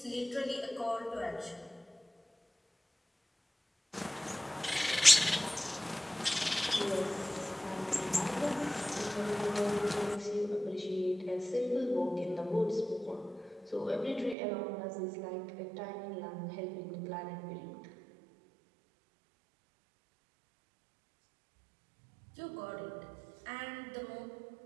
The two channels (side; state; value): left; drops out; at 14.4 s